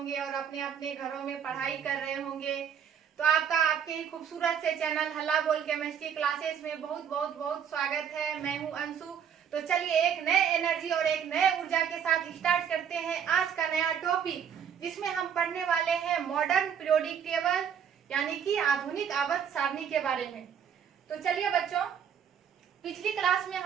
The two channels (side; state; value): left; quieter; 8.1 dB